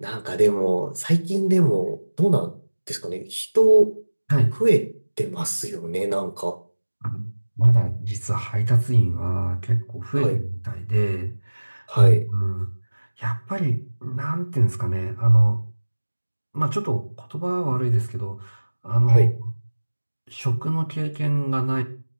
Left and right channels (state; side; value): inverted; both; correlation -1.00